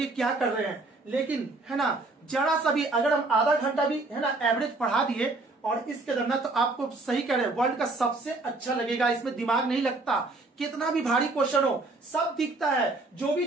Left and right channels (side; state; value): left; quieter; 3.2 dB